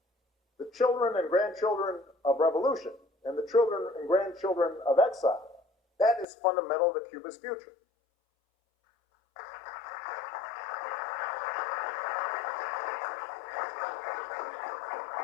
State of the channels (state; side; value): drops out; right; at 6.2 s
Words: the children and grandchildren of revolution, and the children and grandchildren of exile, that is fundamental to Cuba's future.